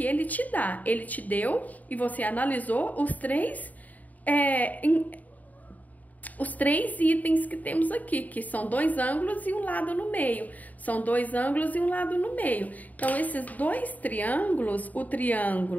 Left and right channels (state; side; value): late; right; 0.076 ms